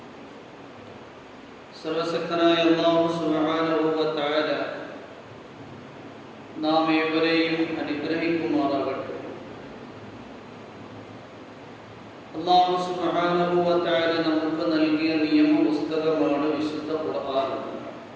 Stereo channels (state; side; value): identical; both; correlation 1.00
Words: സർവശക്തനായ അല്ലാഹു സുബ്ഹാനഹു വ തആല നാം ഏവരെയും അനുഗ്രഹിക്കുമാറാകട്ടെ. അല്ലാഹു സുബ്ഹാനഹു വ തആല നമുക്ക് നൽകിയ നിയമ പുസ്തകമാണ് വിശുദ്ധ ഖുർആൻ.